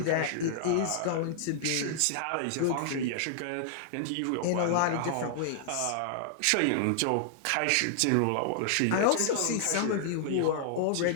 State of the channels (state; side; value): different; both; correlation -0.01